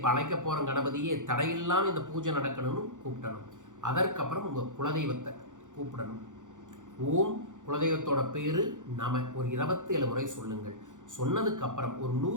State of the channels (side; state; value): left; late; 0.86 ms